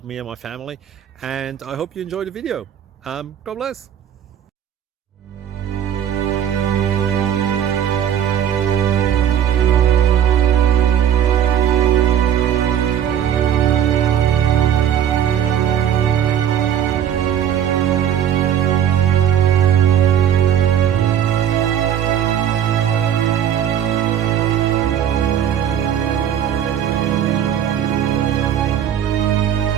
me and my family. And I hope you enjoy the video. God bless.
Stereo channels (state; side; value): quieter; left; 9.6 dB